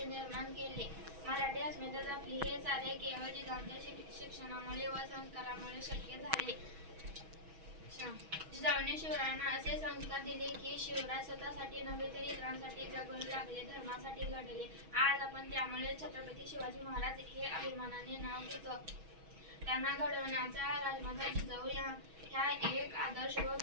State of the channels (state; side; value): late; left; 6.2 ms